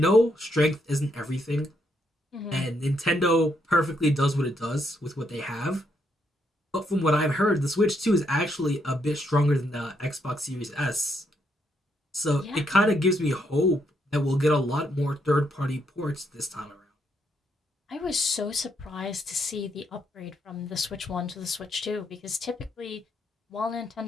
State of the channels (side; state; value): both; normal; correlation 0.76